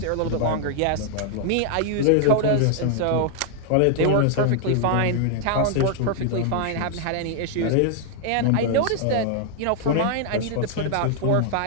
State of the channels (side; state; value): both; different; correlation 0.00